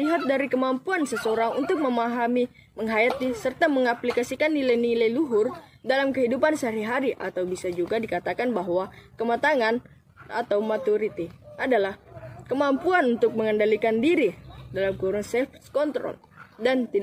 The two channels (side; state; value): both; identical; correlation 1.00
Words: dari kemampuan seseorang untuk memahami, menghayati, serta mengaplikasikan nilai-nilai luhur dalam kehidupan sehari-hari, atau bisa juga dikatakan bahwa kematangan atau maturity adalah kemampuan untuk mengendalikan diri dalam kurun self-control dan